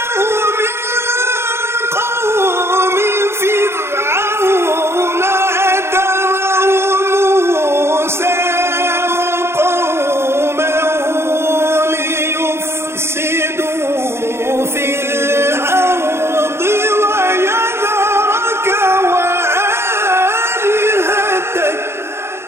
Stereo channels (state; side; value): late; left; 0.12 ms